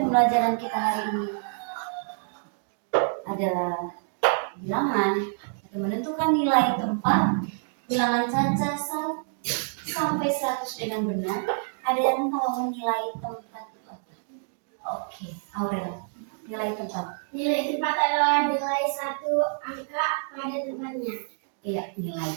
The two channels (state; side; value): silent; left; digital silence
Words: pembelajaran kita hari ini adalah bilangan atau menentukan nilai tempat bilangan caca sampai 100 dengan benar. Ada yang tahu nilai tempat itu apa? Oke, Aurel. Nilai tempat. Nilai tempat adalah nilai satu angka pada tempatnya. Iya, nilai